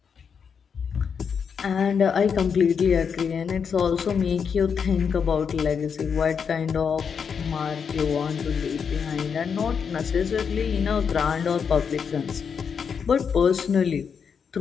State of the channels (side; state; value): right; quieter; 6.6 dB